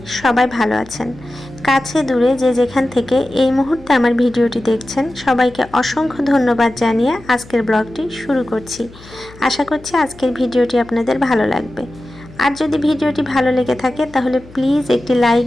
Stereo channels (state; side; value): noise; left; hum, 21 dB below the sound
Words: সবাই ভালো আছেন। কাছে দূরে যে যেখান থেকে এই মুহূর্তে আমার ভিডিওটি দেখছেন সবাইকে অসংখ্য ধন্যবাদ জানিয়ে আজকের ব্লগটি শুরু করছি। আশা করছি আজকের ভিডিওটি আপনাদের ভালো লাগবে। আর যদি ভিডিওটি ভালো লেগে থাকে তাহলে প্লিজ একটি লাইক